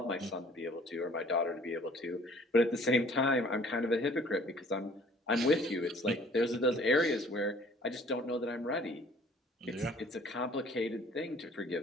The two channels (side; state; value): both; normal; correlation 0.54